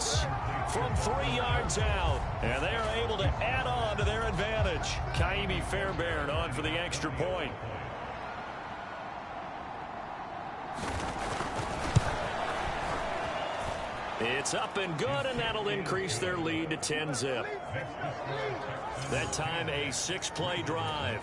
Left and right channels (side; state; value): both; identical; correlation 1.00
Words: from 3 yards out, and they are able to add on to their advantage. Kaimi Fairbairn on for the extra point. It's up and good, and that'll increase their lead to 10-zip. That time a 6-play drive.